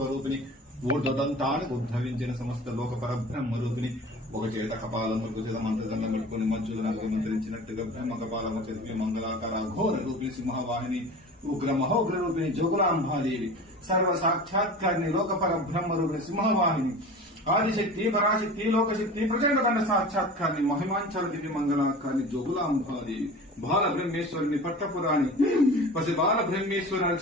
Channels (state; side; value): normal; both; correlation 0.37